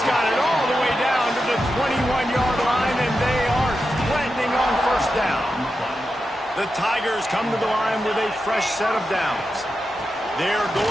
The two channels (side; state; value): both; normal; correlation 0.89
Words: got it all the way down to the 21-yard line, and they are threatening on 1st down. The Tigers come to the line with a fresh set of downs. They're